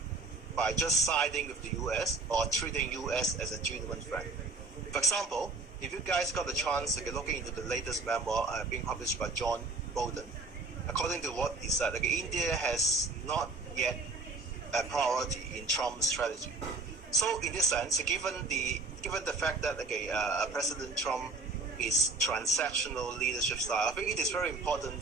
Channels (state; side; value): quieter; left; 3.8 dB